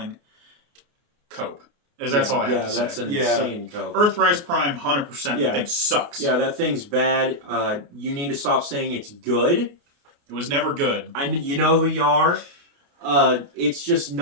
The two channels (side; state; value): left; late; 29 ms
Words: Cope. That's all I have to say. Yeah, that's an insane cope. Earthrise Prime, 100%. That thing sucks. Yeah, that thing's bad. You need to stop saying it's good. It was never good. You know who you are. It's just